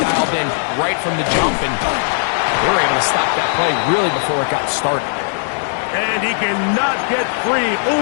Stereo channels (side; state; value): right; silent; digital silence